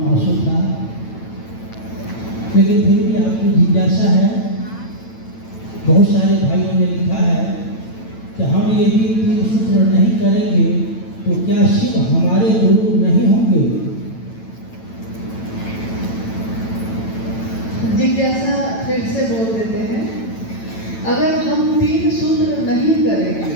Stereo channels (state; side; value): late; right; 9.0 ms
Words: आंसू था, लेकिन फिर भी आपकी जिज्ञासा है। बहुत सारे भाइयों ने लिखा है कि हम यदि तीन सूत्र नहीं करेंगे तो क्या शिव हमारे गुरु नहीं होंगे? जिज्ञासा फिर से बोल देते हैं, अगर हम तीन सूत्र नहीं